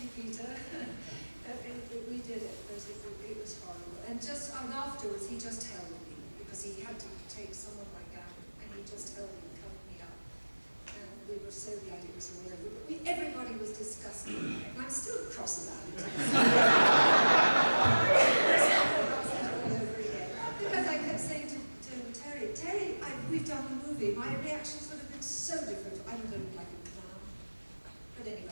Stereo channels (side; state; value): both; inverted; correlation -1.00